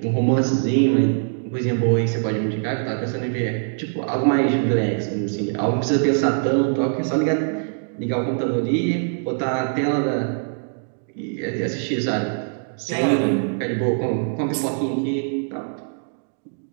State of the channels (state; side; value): silent; left; digital silence